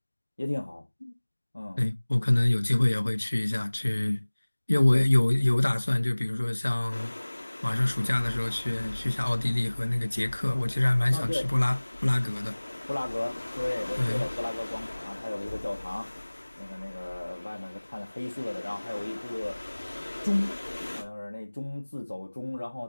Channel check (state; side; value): inverted; both; correlation -1.00